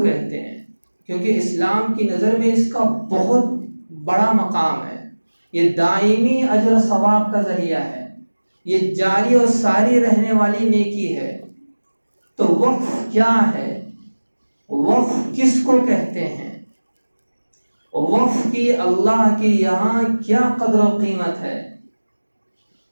ہیں، کیونکہ اسلام کی نظر میں اس کا بہت بڑا مقام ہے۔ یہ دائمی اجر و ثواب کا ذریعہ ہے، یہ جاری اور ساری رہنے والی نیکی ہے۔ تو وقف کیا ہے؟ وقف کس کو کہتے ہیں؟ وقف کی اللہ کی یہاں کیا قدر و قیمت ہے،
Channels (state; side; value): inverted; both; correlation -1.00